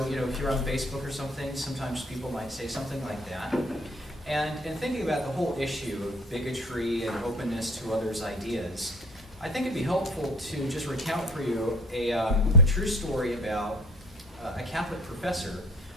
if you're on Facebook or something, sometimes people might say something like that. And in thinking about the whole issue of bigotry and openness to others' ideas, I think it'd be helpful to just recount for you a true story about a Catholic professor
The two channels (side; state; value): both; normal; correlation 0.47